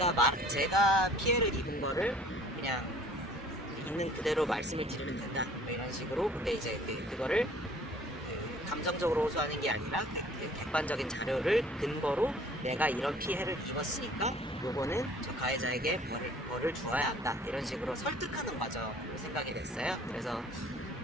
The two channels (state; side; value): normal; both; correlation 0.52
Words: 피해를 입은 거를 그냥 있는 그대로 말씀을 드리면 된다 뭐 이런 식으로 근데 이제 그거를 감정적으로 호소하는 게 아니라 객관적인 자료를 근거로 내가 이런 피해를 입었으니까 요거는 저 가해자에게 뭐를 주어야 한다 이런 식으로 설득하는 과정으로 생각이 됐어요. 그래서